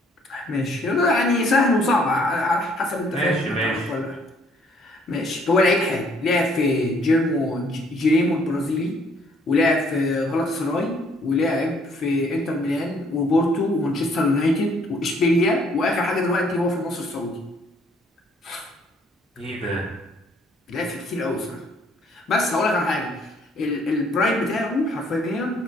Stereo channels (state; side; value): normal; both; correlation 0.64